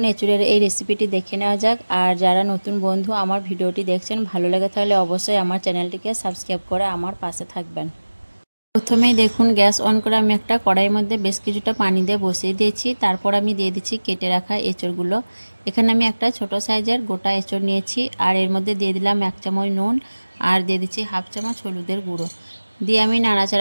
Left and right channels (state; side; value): inverted; both; correlation -1.00